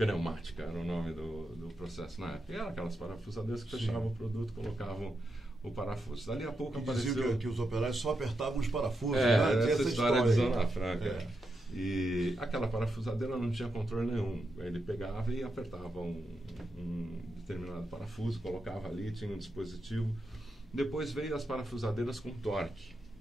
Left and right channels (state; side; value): normal; both; correlation 0.85